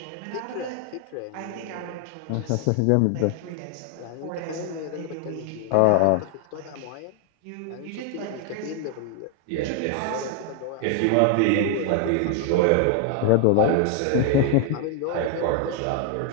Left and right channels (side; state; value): both; different; correlation 0.00